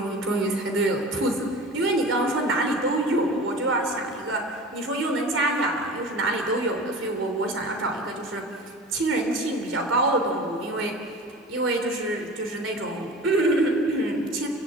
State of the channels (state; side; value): normal; both; correlation 0.37